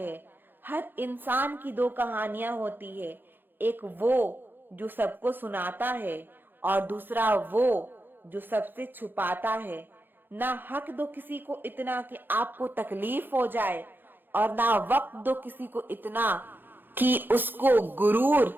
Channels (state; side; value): late; left; 0.096 ms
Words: हर इंसान की दो कहानियां होती है, एक वो जो सबको सुनाता है और दूसरा वो जो सबसे छुपाता है। ना हक दो किसी को इतना कि आपको तकलीफ हो जाए, और ना वक्त दो किसी को इतना कि उसको गुरूर